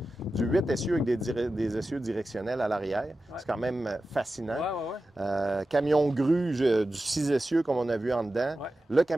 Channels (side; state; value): both; normal; correlation 0.93